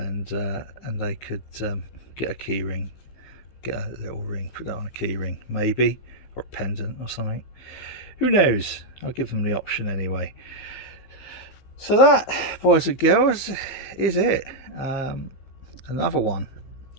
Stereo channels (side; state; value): right; late; 15 ms